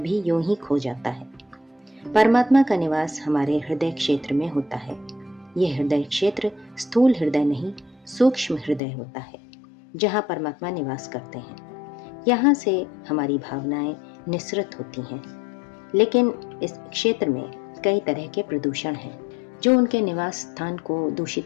यूं ही खो जाता है। परमात्मा का निवास हमारे हृदय क्षेत्र में होता है। यह हृदय क्षेत्र स्थूल हृदय नहीं, सूक्ष्म हृदय होता है, जहाँ परमात्मा निवास करते हैं। यहाँ से हमारी भावनाएं निःसृत होती हैं, लेकिन इस क्षेत्र में कई तरह के प्रदूषण हैं जो उनके निवास स्थान को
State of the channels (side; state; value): right; drops out; at 8.8 s